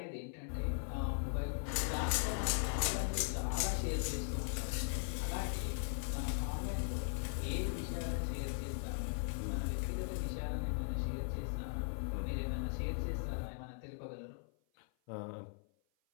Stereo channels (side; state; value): right; silent; 52 dB below the other